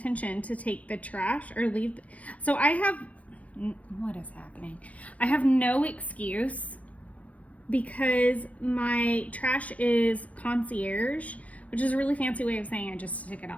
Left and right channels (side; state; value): right; late; 0.068 ms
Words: to take the trash or leave. So I have, what is happening? I have no excuse because my trash is concierge, which is a really fancy way of saying I just stick it